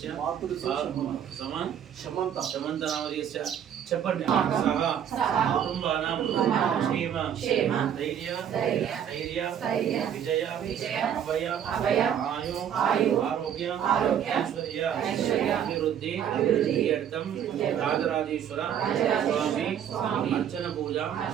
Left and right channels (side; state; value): left; quieter; 9.2 dB